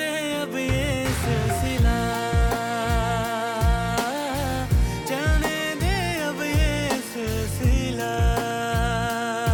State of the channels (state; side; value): identical; both; correlation 1.00